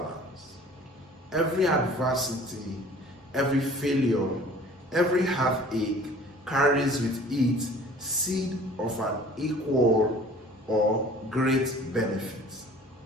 Every adversity, every failure, every heartache carries with it seed of an equal or great benefit.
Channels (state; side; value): normal; both; correlation 0.48